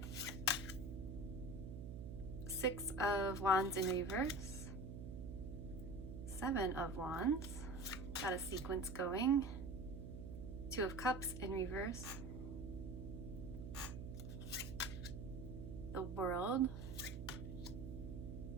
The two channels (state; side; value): noise; right; hum, 8 dB below the sound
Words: Six of Wands in reverse, Seven of Wands, got a sequence going, Two of Cups in reverse, the World,